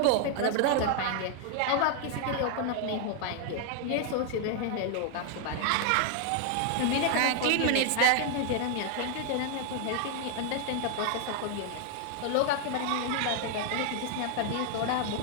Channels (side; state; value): both; different; correlation 0.00